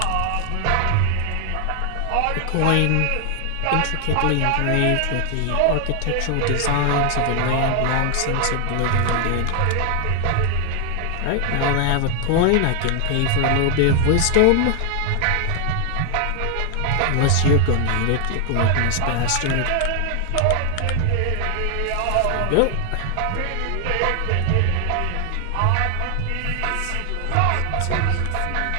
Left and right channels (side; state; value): both; different; correlation 0.00